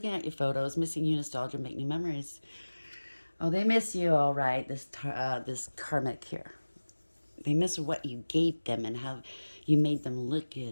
at your photos, missing you, nostalgia, make new memories. Oh, they miss you, all right, this karmic here. They miss what you gave them and how you made them look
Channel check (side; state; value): both; inverted; correlation -1.00